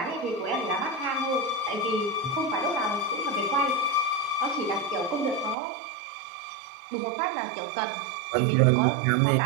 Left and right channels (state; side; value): drops out; left; at 5.6 s